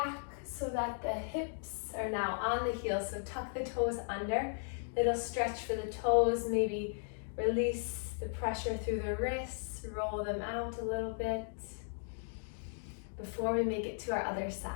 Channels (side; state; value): right; silent; digital silence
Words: so that the hips are now on the heels, so tuck the toes under, little stretch for the toes, maybe release the pressure through the wrists, roll them out a little bit before we make it to our other side.